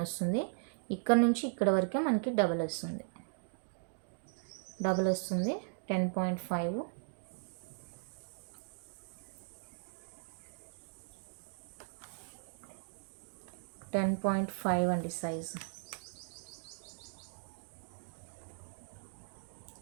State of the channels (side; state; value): left; silent; digital silence